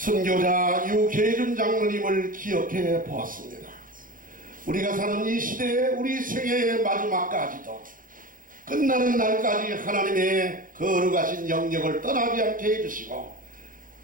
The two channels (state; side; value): late; left; 0.40 ms